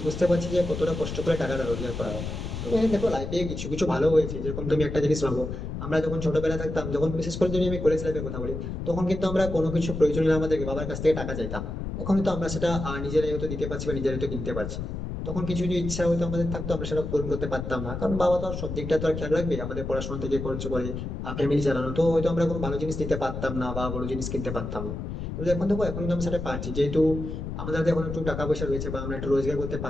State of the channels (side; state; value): left; noise; rumble, 5 dB below the sound